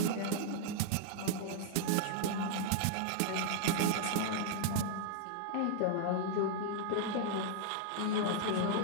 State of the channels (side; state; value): both; different; correlation 0.00